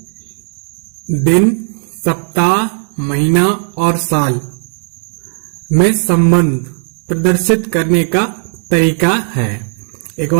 दिन, सप्ताह, महीना और साल में संबंध प्रदर्शित करने का तरीका है। एक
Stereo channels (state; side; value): silent; left; 58 dB below the other